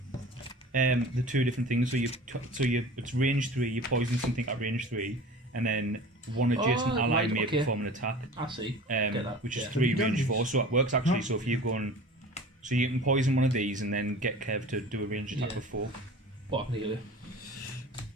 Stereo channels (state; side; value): normal; both; correlation 0.40